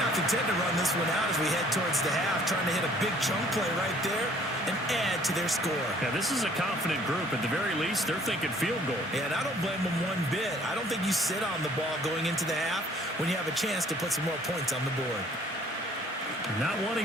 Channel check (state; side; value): normal; both; correlation 0.57